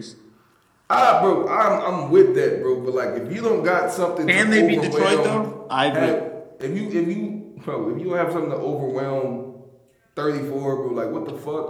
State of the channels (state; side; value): identical; both; correlation 1.00